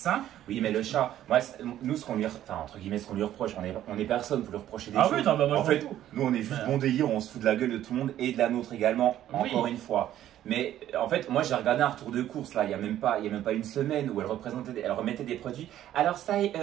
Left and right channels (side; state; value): left; quieter; 12.2 dB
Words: Oui, mais le chat, moi, nous, ce qu'on lui, entre guillemets, ce qu'on lui reproche, on est personne pour lui reprocher des choses. Oui, non, bah, moi, en fait, nous, on est juste bon délire, on se fout de la gueule de tout le monde et de la nôtre également, encore une fois. Mais en fait, moi j'ai regardé un retour de course là, il y a même pas une semaine où elle remettait des produits. Alors ça,